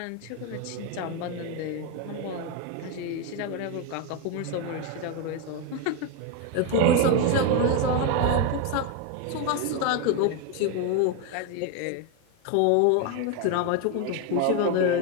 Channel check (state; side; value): different; both; correlation 0.02